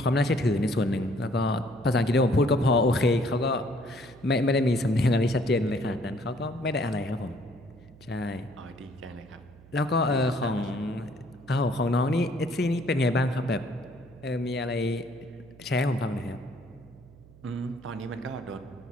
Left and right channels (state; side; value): noise; right; hum, 23 dB below the sound